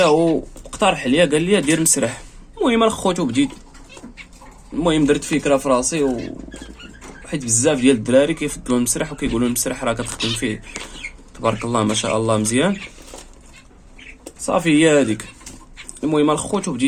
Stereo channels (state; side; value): identical; both; correlation 1.00